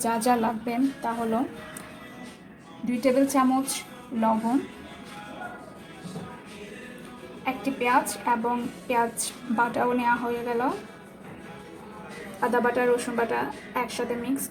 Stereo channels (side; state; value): both; identical; correlation 1.00